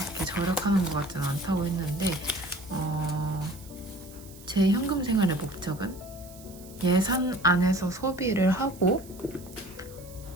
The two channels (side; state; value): right; noise; hiss, 20 dB below the sound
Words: 절약하는 것 같지는 않다고 했는데, 제 현금 생활의 목적은 예산 안에서 소비를 하고